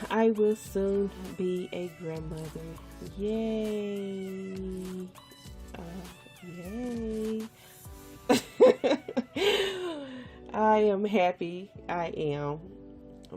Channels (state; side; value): identical; both; correlation 1.00